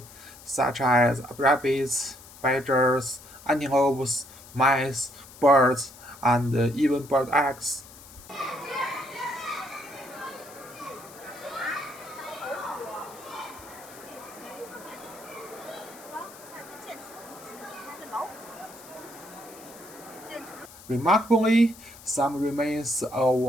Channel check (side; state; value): left; noise; hiss, 19 dB below the sound